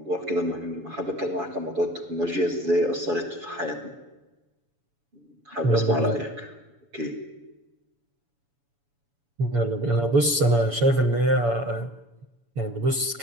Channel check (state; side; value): late; left; 7.1 ms